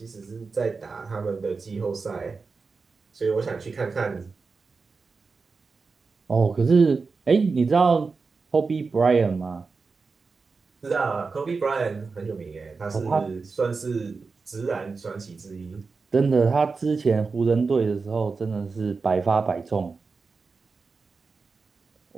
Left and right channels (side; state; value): left; quieter; 4.5 dB